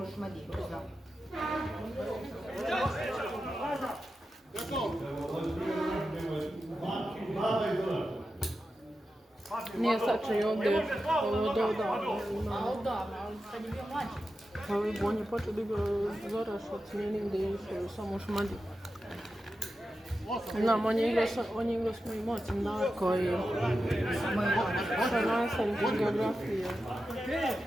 u Šmadi, da. Nije sačaj ovdje od odavno. A odavno, ali kad je bio mlađi. Pa on je počeo da igra Zoraš od smijenim gdje je išao samo u Šmadi. Znam, on je igrao s mojim ocem Darko i sa nastavnik iz geografije. Kad je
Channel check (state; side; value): normal; both; correlation 0.91